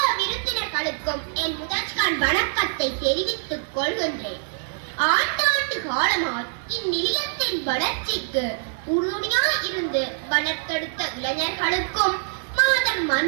விருந்தினர்களுக்கும் என் முதற்கண் வணக்கத்தை தெரிவித்துக் கொள்கின்றேன். ஆண்டாண்டு காலமாய் இந்நிலையத்தின் வளர்ச்சிக்கு உறுதுணையாய் இருந்து வளர்த்தெடுத்த இளைஞர்களுக்கும், மாதர்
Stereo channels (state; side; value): silent; left; digital silence